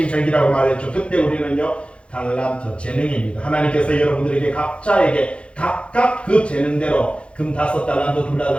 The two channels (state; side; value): late; right; 0.059 ms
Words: 절기라고 말했죠. 그때 우리는요. 달란트, 재능입니다. 하나님께서 여러분들에게 각자에게 각각 그 재능대로 금 5달란트,